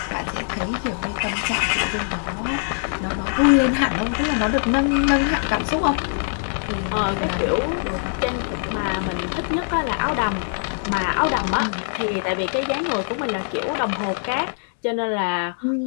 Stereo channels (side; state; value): right; silent; 64 dB below the other